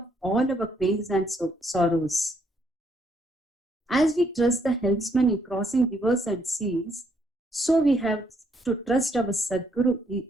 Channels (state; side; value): normal; both; correlation 0.72